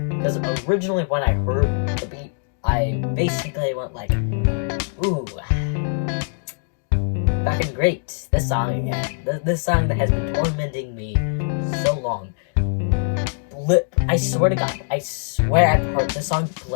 Because originally when I heard the beat, I basically went like, ooh, fucking great, this song again. This song that has been tormenting me so long. I swear to God, I've heard this song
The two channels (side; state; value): right; silent; digital silence